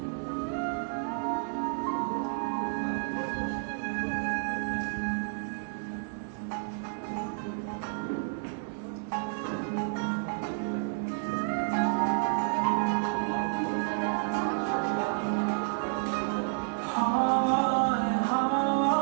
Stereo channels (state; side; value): silent; left; 58 dB below the other